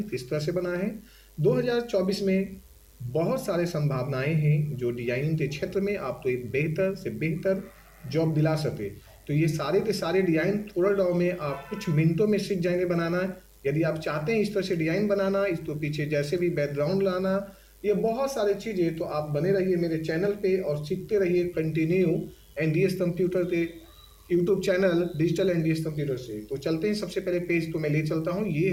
किस तरह से बना है। 2024 में बहुत सारे संभावनाएं हैं जो डिजाइनिंग के क्षेत्र में आपको एक बेहतर से बेहतर जॉब दिला सके। तो ये सारे के सारे डिजाइन कोरल ड्रॉ में आप कुछ मिनटों में सीख जाएंगे बनाना। यदि आप चाहते हैं इस तरह से डिजाइन बनाना, इसको पीछे जैसे भी बैकग्राउंड लाना, ये बहुत सारी चीज़ें, तो आप बने रहिए मेरे चैनल पे और सीखते रहिए कंटिन्यू एनडीएस कंप्यूटर के YouTube channel digital NDS computer से। तो चलते हैं, सबसे पहले पेज तो मैं ले चलता हूँ। ये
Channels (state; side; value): identical; both; correlation 1.00